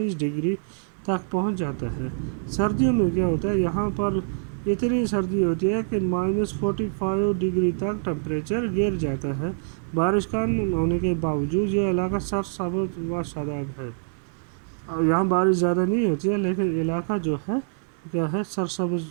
ڈگری تک پہنچ جاتا ہے. سردیوں میں کیا ہوتا ہے؟ یہاں پر اتنی سردی ہوتی ہے کہ -45 ڈگری تک ٹمپریچر گر جاتا ہے. بارش کم ہونے کے باوجود یہ علاقہ سرسبز و شاداب ہے. یہاں بارش زیادہ نہیں ہوتی ہے لیکن علاقہ جو ہے کیا ہے؟ سرسبز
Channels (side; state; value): left; silent; digital silence